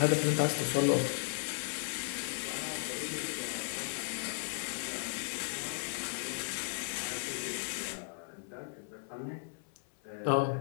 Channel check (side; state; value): right; silent; 54 dB below the other